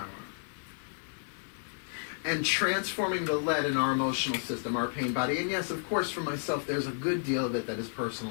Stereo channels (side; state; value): right; silent; digital silence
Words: And transforming the lead in our emotional system, our pain body. And yes, of course, for myself, there's a good deal of it that is